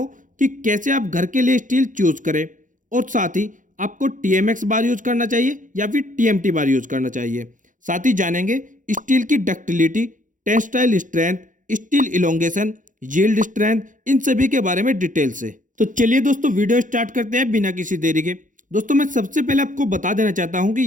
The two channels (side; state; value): left; late; 0.38 ms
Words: कि कैसे आप घर के लिए स्टील चूज करें और साथ ही आपको TMX बार यूज करना चाहिए या फिर TMT बार यूज करना चाहिए। साथ ही जानेंगे स्टील की ductility, tensile strength, steel elongation, yield strength, इन सभी के बारे में डिटेल से। तो चलिए दोस्तों वीडियो स्टार्ट करते हैं बिना किसी देरी के। दोस्तों मैं सबसे पहले आपको बता देना चाहता हूं कि